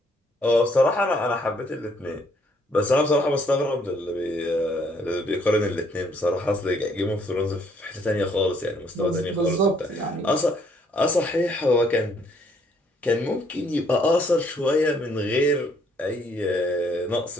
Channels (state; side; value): normal; both; correlation 0.66